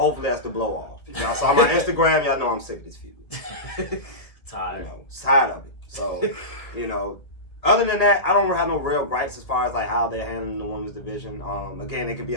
that's the blow off. If y'all saw my Instagram, y'all know I'm sick of this feud. Tired. Tired of it. So, other than that, I don't have no real gripes as far as like how they're handling the women's division. Again, it could be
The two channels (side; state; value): right; late; 1.8 ms